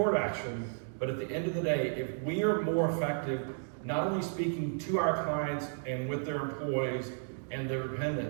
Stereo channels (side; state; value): left; silent; digital silence